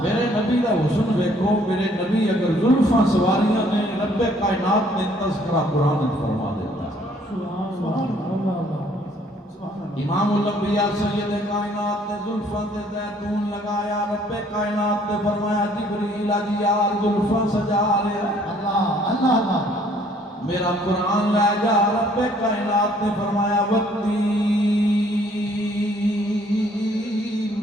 میرے نبی دا حسن ویکھو. میرے نبی اگر زلفاں سواریاں نے رب کائنات نے تذکرہ قرآن وچ فرما دیتا. امام الانبیاء سید کائنات نے زلفاں تے زیتون لگایا. رب کائنات نے فرمایا جبریل آجی یار زلفاں سجا رہا. اللہ میرا قرآن لے جا. رب کائنات نے فرمایا والتین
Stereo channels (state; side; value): normal; both; correlation 0.61